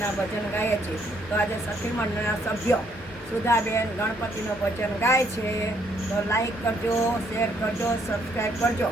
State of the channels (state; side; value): normal; both; correlation 0.69